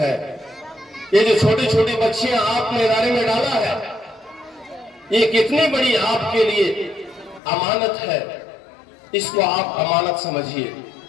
یہ جو چھوٹی چھوٹی بچیاں آپ نے ادارے میں ڈالا ہے، یہ کتنی بڑی آپ کے لیے امانت ہے، اس کو آپ امانت سمجھیے،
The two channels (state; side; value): drops out; right; at 7.4 s